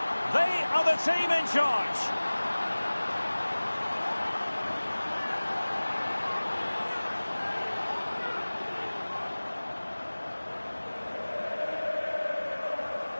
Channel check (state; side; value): inverted; both; correlation -1.00